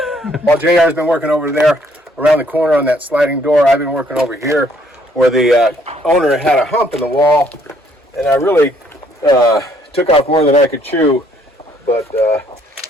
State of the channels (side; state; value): both; normal; correlation 0.65